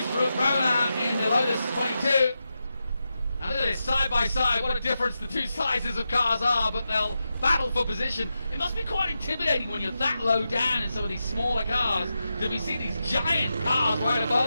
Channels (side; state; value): both; inverted; correlation -0.89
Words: Rona in the Lotus 22. And look at this, side by side, what a difference the two sizes of cars are, but they'll battle for position. It must be quite intimidating when you're that low down in some of these smaller cars to be seeing these giant cars right